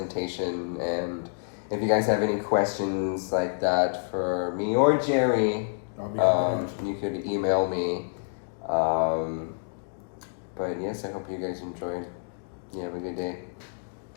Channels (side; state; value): right; silent; digital silence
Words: And if you guys have any questions like that for me or Jerry, I'll be happy to answer. you could email me. But yes, I hope you guys enjoyed. You have a good day.